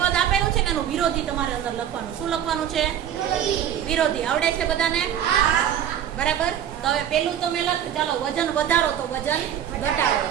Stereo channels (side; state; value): left; quieter; 10.0 dB